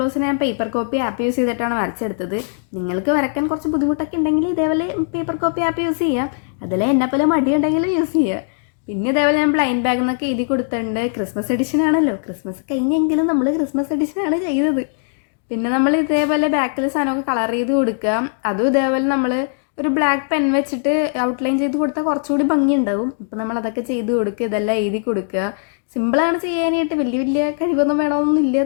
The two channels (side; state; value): right; silent; digital silence